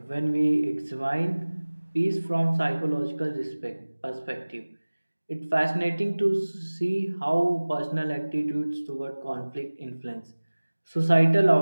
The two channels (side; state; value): both; inverted; correlation -1.00